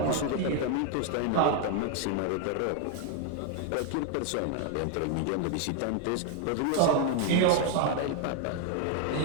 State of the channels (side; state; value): both; different; correlation 0.01